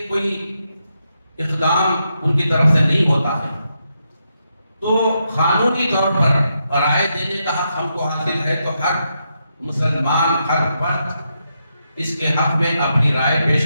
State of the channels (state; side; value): inverted; both; correlation -0.83